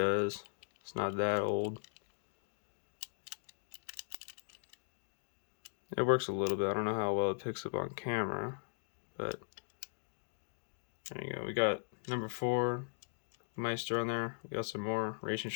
It's not that old. It works a little bit. I don't know how well it picks up on camera, but there you go. We got number 4 Meister on there. We got some more racing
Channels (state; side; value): silent; right; digital silence